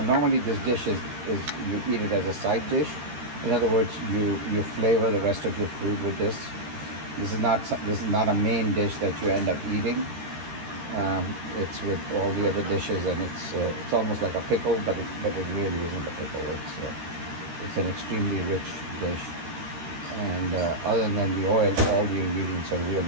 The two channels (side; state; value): left; late; 13 ms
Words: normally this dish is you eat it as a side dish. In other words, you flavor the rest of your food with this. This is not a main dish that you end up eating. It's with all the other dishes, and it's almost like a pickle, but it really isn't a pickle. It's an extremely rich dish, and other than the oil, all the ingredients are